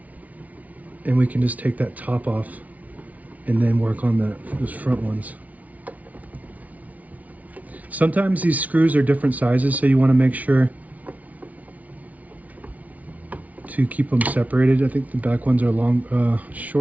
And we can just take that top off and then work on those front ones. Sometimes these screws are different sizes, so you want to make sure to keep them separated. I think the back ones are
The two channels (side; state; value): left; late; 0.071 ms